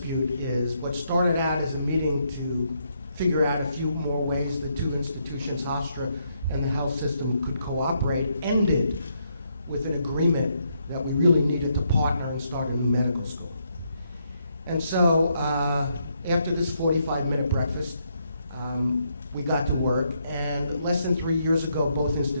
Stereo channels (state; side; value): inverted; both; correlation -0.77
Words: is what started out as a meeting to figure out a few more ways the two institutions, Hofstra and the health system, could cooperate, ended with an agreement that we really needed to partner and start a new medical school. And so after this 45-minute breakfast, we got to work, and less than 3 years ago, both